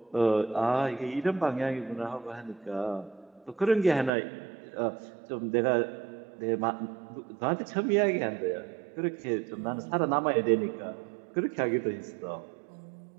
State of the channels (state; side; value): drops out; left; at 4.1 s